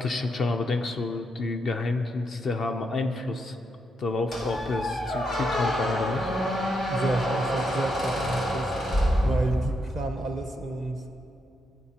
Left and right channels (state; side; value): normal; both; correlation 0.81